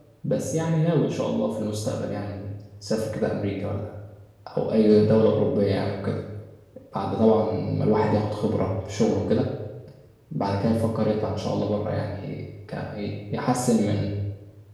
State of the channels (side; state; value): both; identical; correlation 1.00